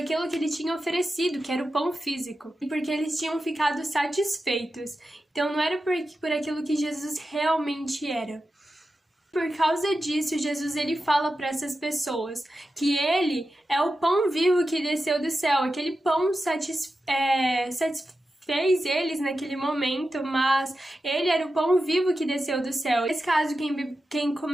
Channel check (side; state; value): both; normal; correlation 0.91